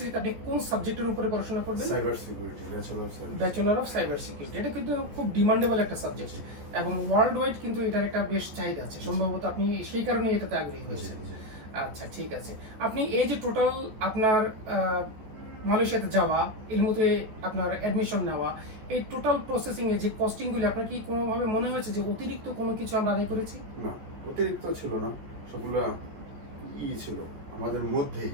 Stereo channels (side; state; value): left; late; 14 ms